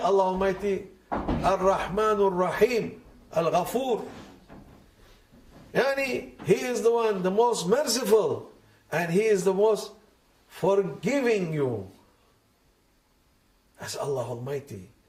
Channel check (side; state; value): both; identical; correlation 1.00